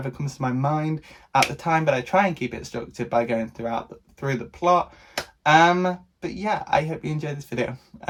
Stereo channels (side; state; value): both; identical; correlation 1.00